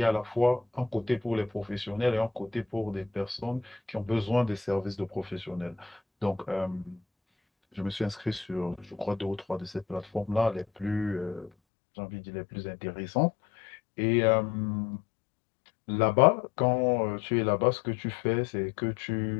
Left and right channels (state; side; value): drops out; right; at 11.5 s